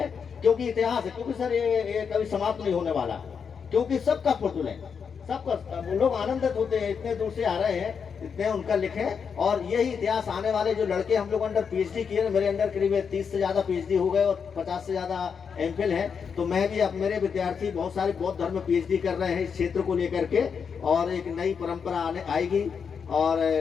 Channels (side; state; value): right; quieter; 6.4 dB